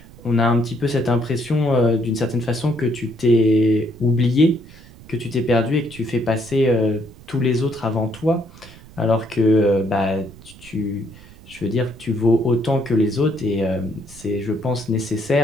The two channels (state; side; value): noise; right; rumble, 21 dB below the sound